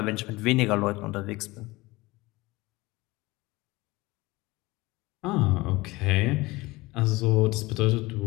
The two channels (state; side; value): quieter; right; 21.2 dB